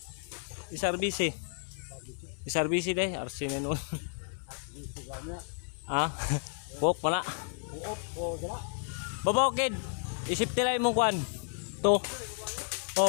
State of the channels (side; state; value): right; silent; 56 dB below the other